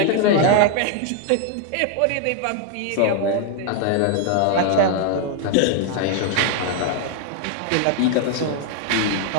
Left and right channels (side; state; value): both; different; correlation 0.00